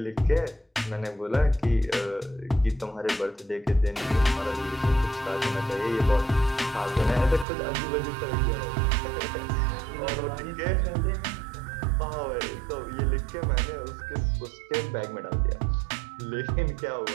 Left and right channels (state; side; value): drops out; left; at 7.5 s